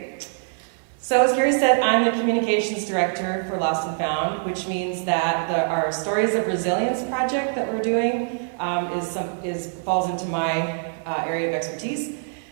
So as Carrie said, I'm the Communications Director for Lost and Found, which means that our Stories of Resilience project that we're doing falls into my area of expertise.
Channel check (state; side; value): silent; left; digital silence